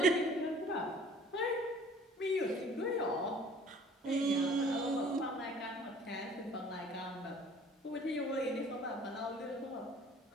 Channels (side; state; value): both; normal; correlation 0.51